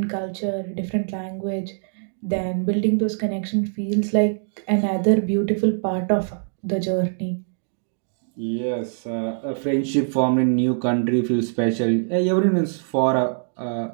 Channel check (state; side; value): silent; left; digital silence